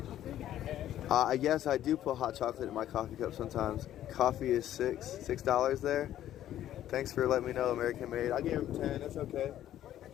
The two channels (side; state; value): right; quieter; 12.1 dB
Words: Yes, I do put hot chocolate in my coffee cup sometimes. Coffee is $6 there. Thanks for letting me know, American Made. I gave him 10, that's okay.